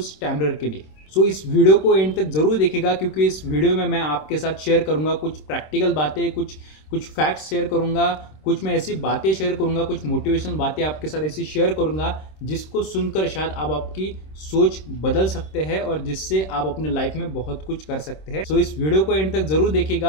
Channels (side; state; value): right; late; 26 ms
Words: स्टैमरर के लिए। इस वीडियो को एंड तक जरूर देखिएगा, क्योंकि इस वीडियो में मैं आपके साथ शेयर करूंगा कुछ प्रैक्टिकल बातें, कुछ कुछ फैक्ट्स शेयर करूंगा, कुछ मैं ऐसी बातें शेयर करूंगा, कुछ मोटिवेशनल बातें आपके साथ ऐसी शेयर करूंगा जिसको सुनकर शायद आप आपकी सोच बदल सकते हैं और जिससे आप अपने लाइफ में बहुत कुछ कर सकते हैं। इस वीडियो को एंड तक जरूर